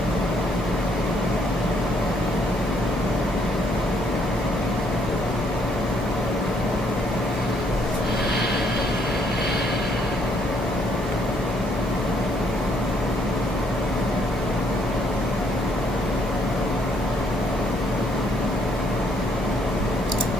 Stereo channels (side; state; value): both; normal; correlation 0.69